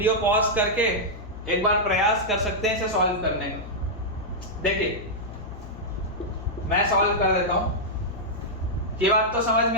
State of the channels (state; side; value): noise; left; hum, 13 dB below the sound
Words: पॉज करके एक बार प्रयास कर सकते हैं इसे सॉल्व करने का। देखिए मैं सॉल्व कर देता हूं। ये बात तो समझ